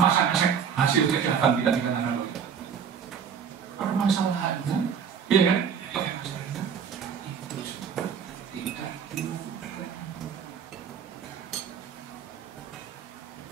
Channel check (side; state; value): left; quieter; 7.2 dB